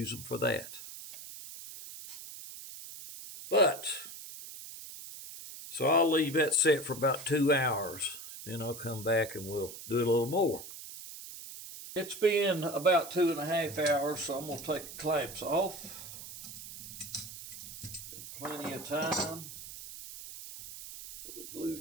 them for that. But, so I'll leave that set for about 2 hours. Then I'll come back and we'll do a little more. It's been about 2.5 hours, so I'm going to take the clamps off. Been plenty of time for the glue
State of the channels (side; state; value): right; noise; hiss, 12 dB below the sound